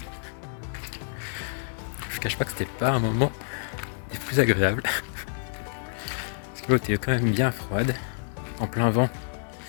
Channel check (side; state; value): right; silent; digital silence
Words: Je cache pas que c'était pas un moment des plus agréables parce que l'eau était quand même bien froide, en plein vent